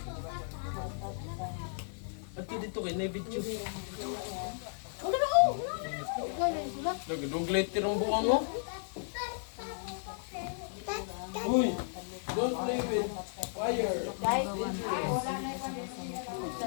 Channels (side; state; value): right; silent; 55 dB below the other